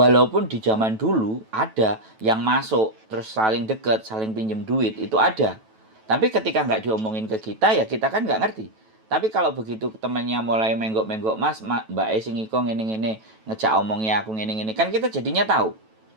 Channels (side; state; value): left; late; 9.1 ms